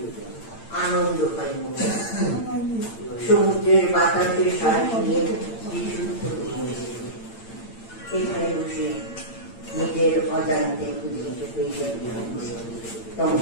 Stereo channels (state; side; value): late; right; 8.8 ms